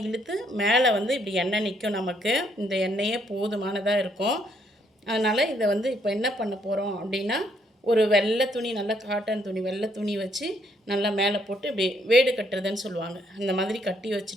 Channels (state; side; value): normal; both; correlation 0.70